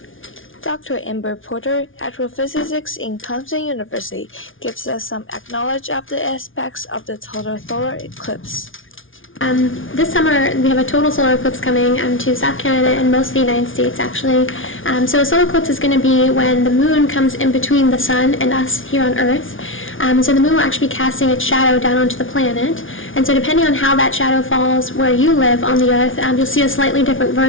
Dr. Amber Porter, astrophysicist in Clemson University, gives us some knowledge of the aspects of the total solar eclipse. This summer, we have a total solar eclipse coming to South Canada and most of the United States, actually. So a solar eclipse is going to be when the moon comes in between the sun and us here on Earth. So the moon will actually be casting its shadow down onto the planet. And so depending on how that shadow falls where you live on the Earth, you'll see a slightly different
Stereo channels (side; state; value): right; late; 0.57 ms